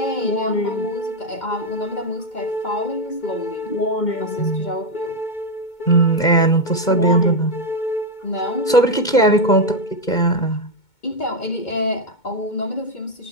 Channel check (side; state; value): right; late; 2.2 ms